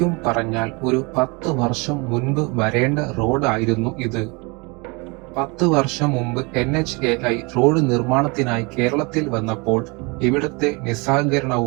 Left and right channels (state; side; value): quieter; left; 28.8 dB